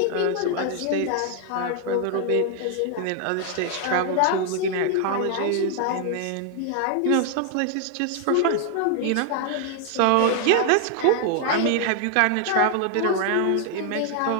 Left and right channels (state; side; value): different; both; correlation 0.00